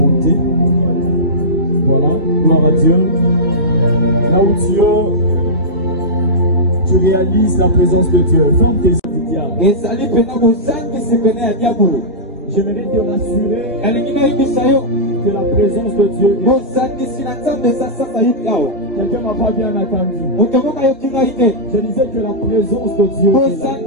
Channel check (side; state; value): both; normal; correlation -0.15